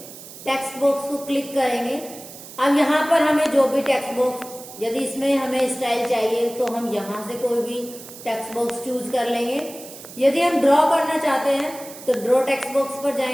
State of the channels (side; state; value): right; noise; hiss, 16 dB below the sound